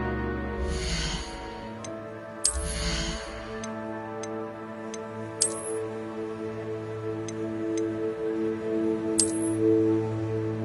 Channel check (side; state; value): both; identical; correlation 1.00